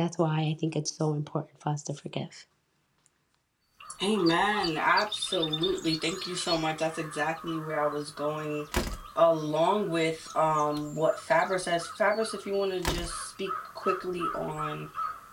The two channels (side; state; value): both; identical; correlation 1.00